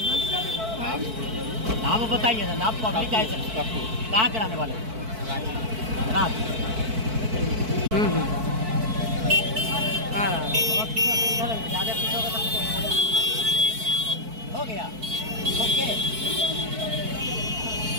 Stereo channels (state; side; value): late; left; 4.5 ms